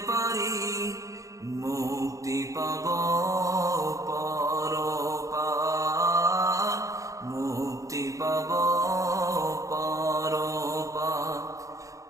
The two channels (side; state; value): left; late; 0.16 ms